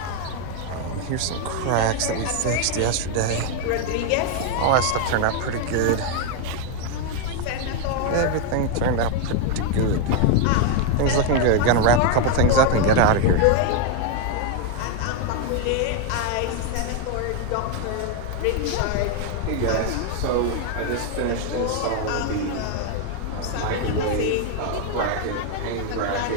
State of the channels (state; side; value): different; both; correlation 0.01